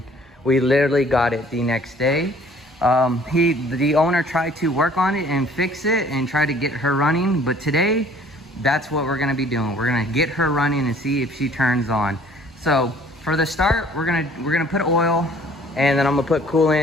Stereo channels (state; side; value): normal; both; correlation 0.56